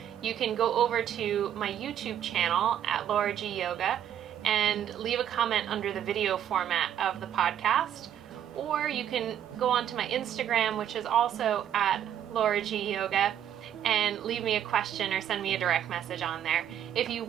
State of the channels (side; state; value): left; quieter; 10.2 dB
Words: you can go over to my YouTube channel at LauraGyoga and leave a comment under the video format of the podcast. Or you can go onto my Instagram, which is also at LauraGyoga, and leave me a question or send me a direct message on there. If you